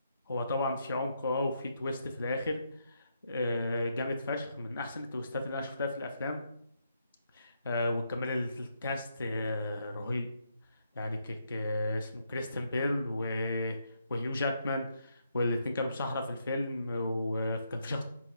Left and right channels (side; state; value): both; inverted; correlation -0.78